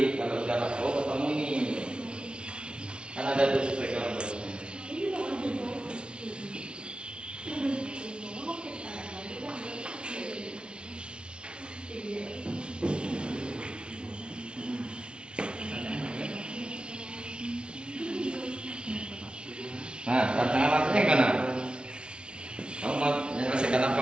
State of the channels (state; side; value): late; left; 0.057 ms